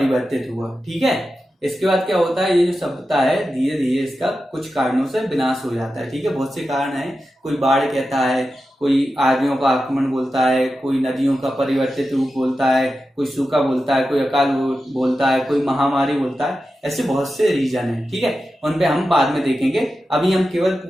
हुआ, ठीक है। इसके बाद क्या होता है, ये जो सभ्यता है धीरे धीरे इसका कुछ कारणों से विनाश हो जाता है, ठीक है। बहुत से कारण है, कोई बाढ़ कहता है, कोई आर्यों का आक्रमण बोलता है, कोई नदियों का परिवर्तित रूप बोलता है, कोई सूखा बोलता है, कोई अकाल बोलता है, कोई महामारी बोलता है। ऐसे बहुत से रीजन है, ठीक है, उन पे हम बाद में देखेंगे। अभी हम केवल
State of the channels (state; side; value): normal; both; correlation 0.91